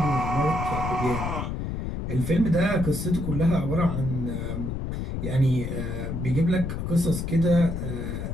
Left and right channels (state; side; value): noise; left; rumble, 4 dB below the sound